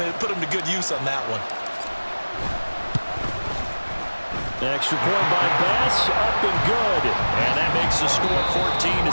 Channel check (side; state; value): both; inverted; correlation -1.00